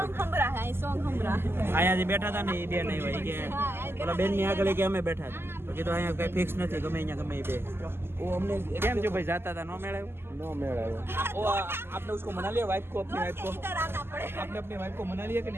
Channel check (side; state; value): left; late; 0.12 ms